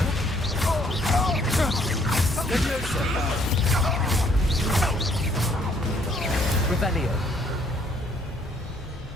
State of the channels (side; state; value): both; normal; correlation 0.65